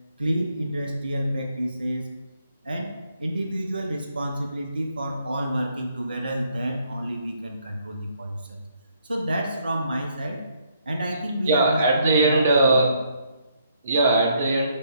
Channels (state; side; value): inverted; both; correlation -0.71